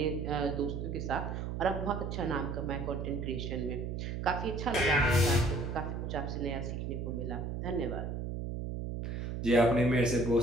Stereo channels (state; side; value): noise; right; hum, 4 dB below the sound